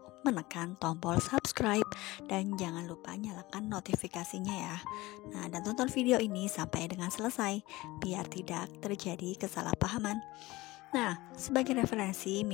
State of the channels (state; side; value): quieter; right; 19.9 dB